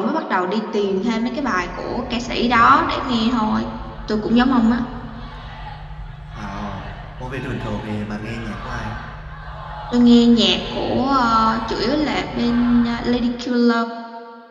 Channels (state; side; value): identical; both; correlation 1.00